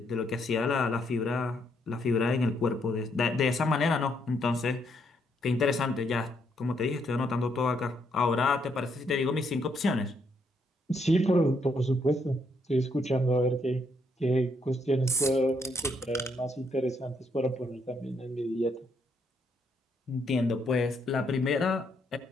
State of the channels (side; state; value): both; normal; correlation 0.74